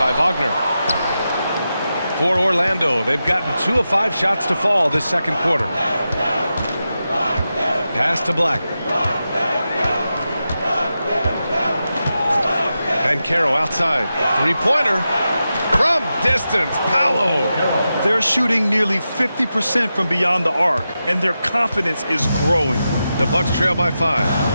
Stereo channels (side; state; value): both; inverted; correlation -0.90